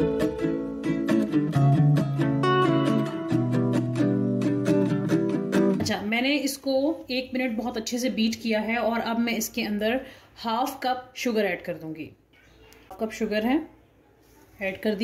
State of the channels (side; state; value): both; identical; correlation 1.00